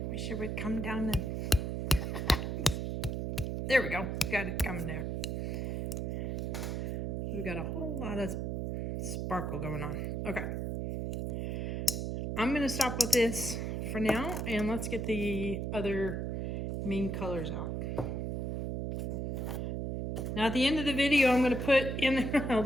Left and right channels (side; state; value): right; noise; hum, 1 dB below the sound